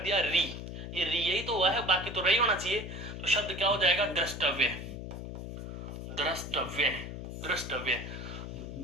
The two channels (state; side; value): noise; left; hum, 8 dB below the sound